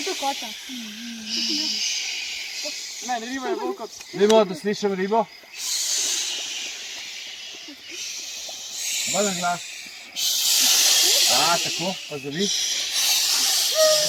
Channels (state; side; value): identical; both; correlation 1.00